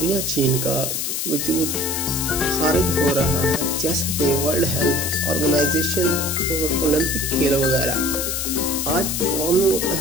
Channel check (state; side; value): noise; left; hiss, 1 dB below the sound